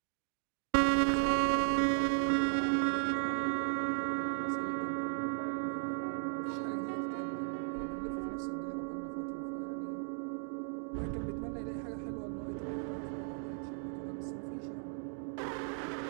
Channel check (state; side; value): silent; left; 54 dB below the other